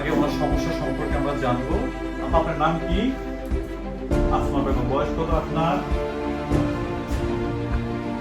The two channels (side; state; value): both; identical; correlation 1.00